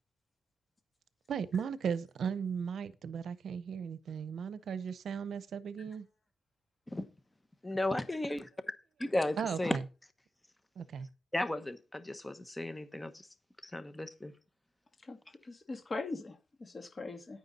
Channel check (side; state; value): both; normal; correlation 0.88